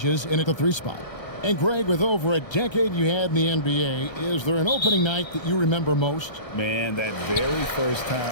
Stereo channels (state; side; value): late; right; 1.3 ms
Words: in at the 3 spot. And Greg, with over a decade you had in the NBA, is there an opening night that you remember most? Man, that very first